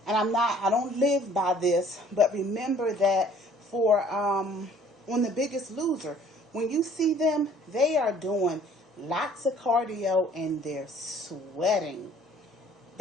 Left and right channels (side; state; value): both; normal; correlation 0.55